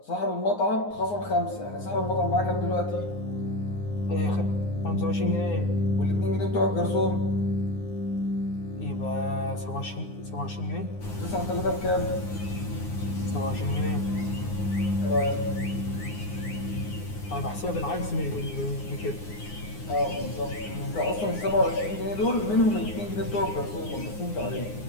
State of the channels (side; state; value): right; late; 9.7 ms